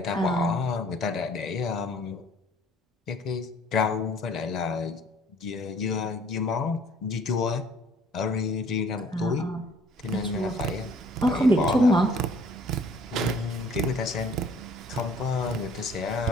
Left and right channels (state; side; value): normal; both; correlation 0.56